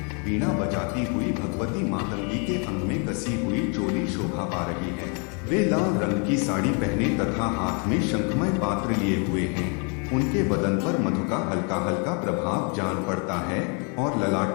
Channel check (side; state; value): right; quieter; 36.9 dB